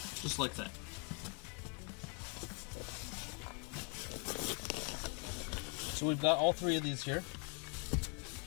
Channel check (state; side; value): quieter; right; 37.0 dB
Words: Just like that. So we've got all three of these here.